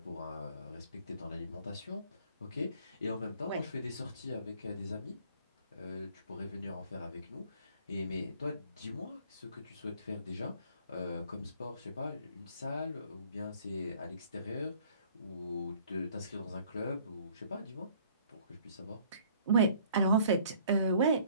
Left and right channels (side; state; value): both; inverted; correlation -0.57